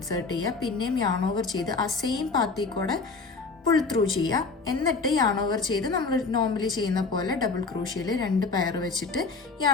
ചെയ്യുക, പിന്നെയും യാൺ ഓവർ ചെയ്ത് ആ സെയിം പാത്തിൽ കൂടെ പുൾ ത്രൂ ചെയ്യുക, എന്നിട്ട് യാൺ ഓവർ ചെയ്ത് നമ്മൾ നോർമലി ചെയ്യുന്ന പോലെ ഡബിൾ ക്രോഷ്യയിൽ 2 പെയർ വെച്ചിട്ട്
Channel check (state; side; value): quieter; right; 4.2 dB